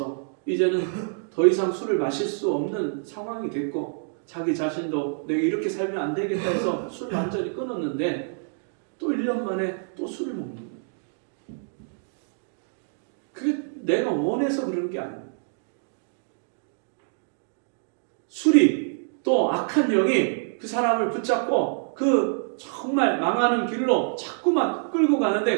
이제는 더 이상 술을 마실 수 없는 상황이 됐고 자기 자신도 내가 이렇게 살면 안 되겠다 해서 술을 완전히 끊었는데 또 1년 만에 또 술을 먹는 거예요. 그게 내가 원해서 그런 게 아니에요. 술이 또 악한 영이 그 사람을 붙잡고 그 정말 망하는 길로 자꾸만 끌고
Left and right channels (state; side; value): silent; left; digital silence